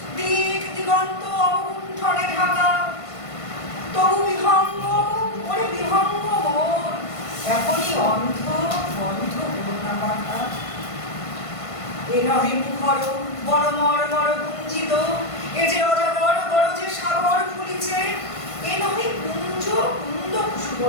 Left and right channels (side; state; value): right; late; 1.5 ms